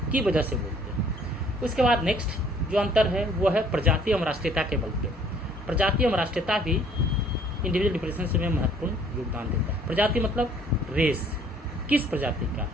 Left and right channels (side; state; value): both; normal; correlation 0.59